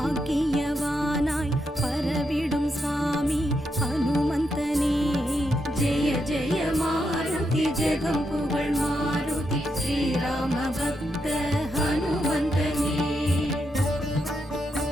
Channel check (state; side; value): normal; both; correlation 0.82